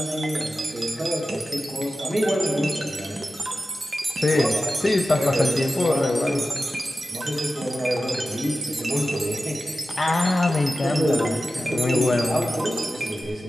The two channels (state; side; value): normal; both; correlation 0.94